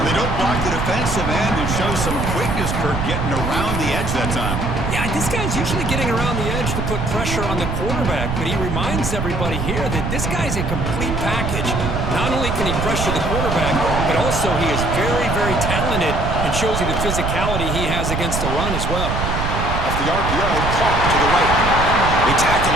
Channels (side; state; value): right; noise; rumble, 2 dB below the sound